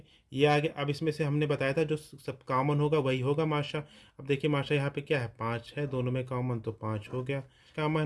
ये आ गया। अब इसमें से हमने बताया था जो सब कॉमन होगा वही होगा माशा। अब देखिए माशा यहाँ पे क्या है, 5 है, दोनों में कॉमन तो 5 हो गया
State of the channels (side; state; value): both; identical; correlation 1.00